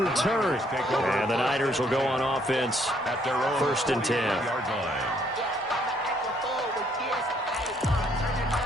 And the Niners will go on offense At their own first and 10. 40-yard line.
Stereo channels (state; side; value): normal; both; correlation 0.67